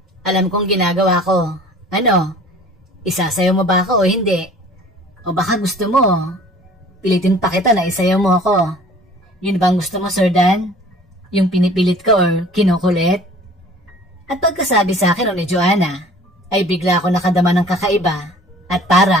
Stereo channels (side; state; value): both; normal; correlation 0.49